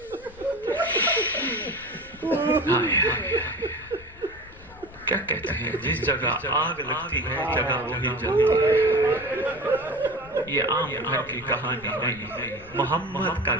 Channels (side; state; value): left; noise; rumble, 21 dB below the sound